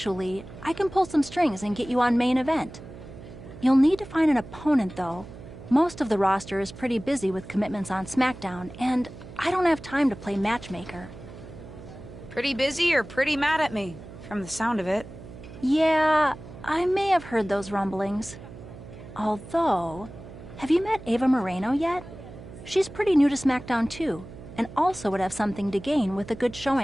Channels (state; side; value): noise; right; hum, 15 dB below the sound